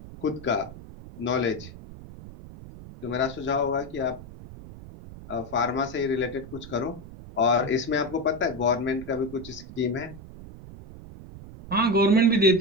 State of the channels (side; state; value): right; noise; rumble, 15 dB below the sound